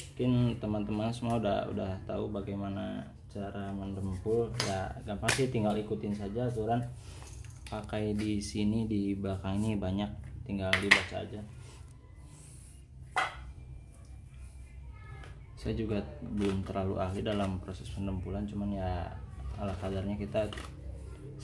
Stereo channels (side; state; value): both; identical; correlation 1.00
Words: Mungkin teman-teman semua udah tahu bagaimana cara mendempul ya, gampang sih, tinggal ikutin saja aturan. Pakai di sini di belakang ini banyak, tinggal dibaca aja. Saya juga belum terlalu ahli dalam proses pendempulan, cuman ya ala kadarnya kita